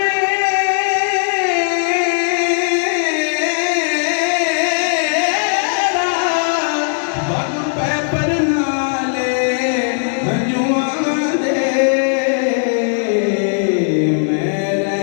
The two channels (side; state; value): right; silent; digital silence